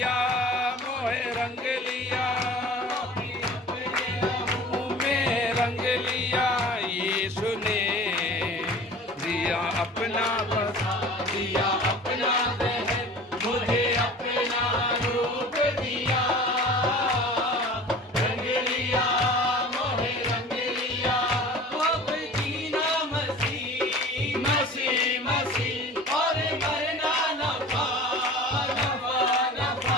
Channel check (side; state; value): both; normal; correlation 0.41